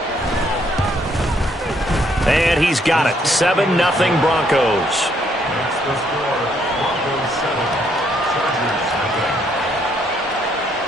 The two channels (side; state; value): both; normal; correlation 0.70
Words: And he's got it. 7-0 Broncos.